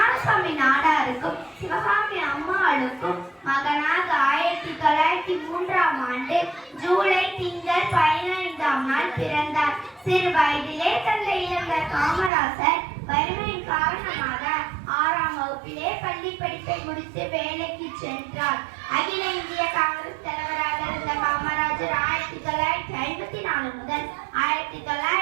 நாடாருக்கும் சிவகாமி அம்மாளுக்கும் மகனாக 1903ஆம் ஆண்டு ஜூலை திங்கள் 15ஆம் நாள் பிறந்தார். சிறு வயதிலே தந்தை இழந்த காமராசர் வறுமையின் காரணமாக 6ஆம் வகுப்பிலே பள்ளி படிப்பை முடித்து வேலைக்கு சென்றார். அகில இந்திய காங்கிரஸ் தலைவராக இருந்த காமராஜர் 1954 முதல்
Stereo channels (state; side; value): drops out; left; at 12.3 s